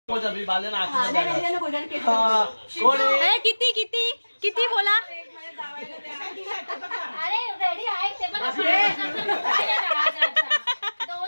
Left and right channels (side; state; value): both; inverted; correlation -1.00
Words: किती किती किती बोला. अरे रेडी आहे ते पण 2000